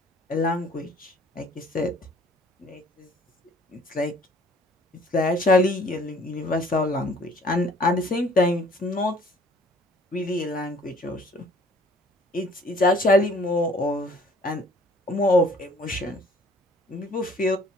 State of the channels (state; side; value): normal; both; correlation 0.56